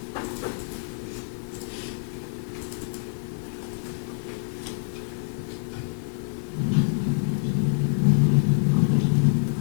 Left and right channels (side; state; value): right; silent; digital silence